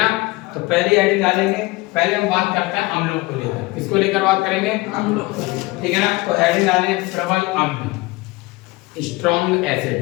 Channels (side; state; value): right; quieter; 22.3 dB